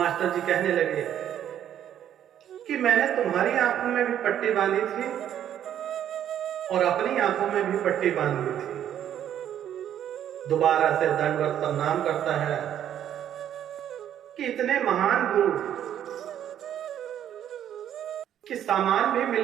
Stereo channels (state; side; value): quieter; left; 10.4 dB